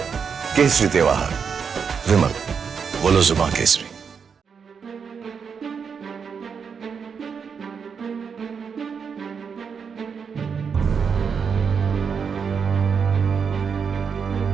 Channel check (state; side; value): quieter; left; 6.3 dB